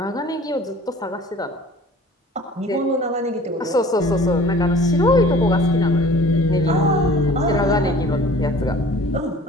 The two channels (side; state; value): both; normal; correlation 0.48